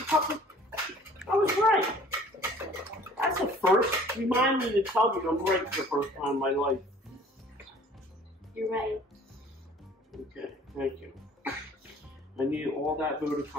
cup. I was right. That's a first. Remind me to tell me I'm right for the first time in my life. You're right. Okay, thank you. I need all that vote of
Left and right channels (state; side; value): normal; both; correlation 0.51